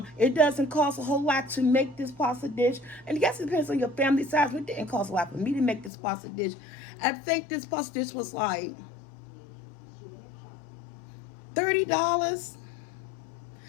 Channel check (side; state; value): right; drops out; at 5.9 s